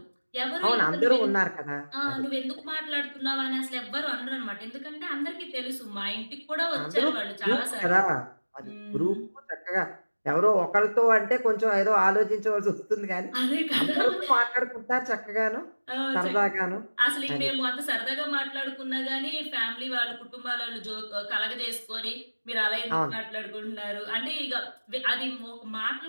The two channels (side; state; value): both; inverted; correlation -1.00